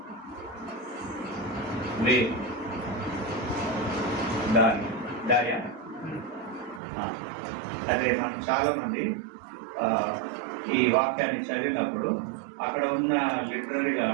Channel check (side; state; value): left; drops out; at 6.8 s